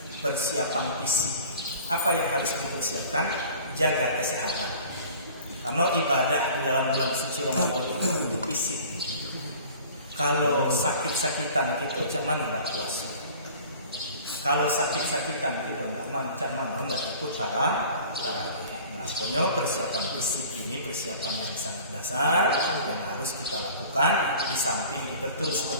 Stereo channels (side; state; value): both; inverted; correlation -0.45